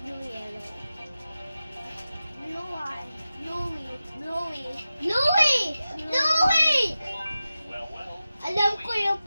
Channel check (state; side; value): inverted; both; correlation -0.94